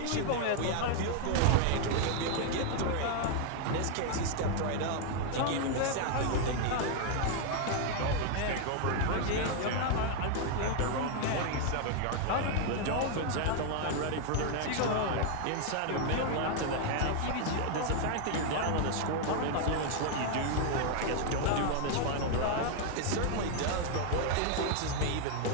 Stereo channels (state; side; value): different; both; correlation 0.00